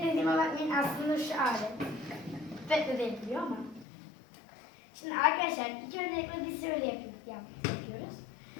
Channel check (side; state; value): right; drops out; at 3.9 s